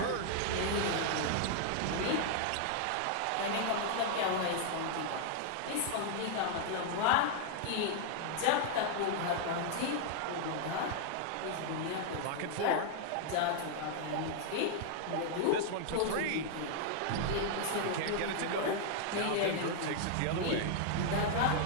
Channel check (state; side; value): different; both; correlation 0.00